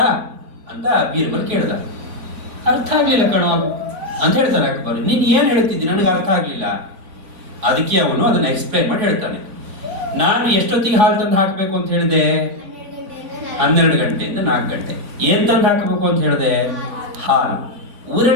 ಬೀರ್ಬಲ್ ಕೇಳಿದ. ಅರ್ಥ ಆಗ್ಲಿಲ್ಲ ಕಣೋ ಅಂತ ಹೇಳ್ತಾನೆ ಅಕ್ಬರ್. ನೀನ್ ಏನ್ ಹೇಳ್ತಿದ್ದಿ, ನನಗೆ ಅರ್ಥ ಆಗ್ಲಿಲ್ಲ. ಅದಕ್ಕೆ ಅವನು ಅದನ್ನ ಎಕ್ಸ್ಪ್ಲೈನ್ ಮಾಡಿ ಹೇಳ್ತಾನೆ. ನಾನು ಎಷ್ಟೊತ್ತಿಗೆ ಹಾಲು ತಂದು ಹಾಕಬೇಕು ಅಂತ ಹೇಳಿದೆ? 12 ಗಂಟೆಯಿಂದ 4 ಗಂಟೆ. ಏನ್ ತಂದು ಹಾಕಬೇಕು ಅಂತ ಹೇಳಿದೆ? ಹಾಲು.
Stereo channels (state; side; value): late; left; 3.5 ms